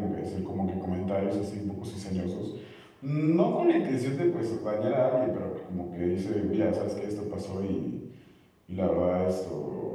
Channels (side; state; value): both; identical; correlation 1.00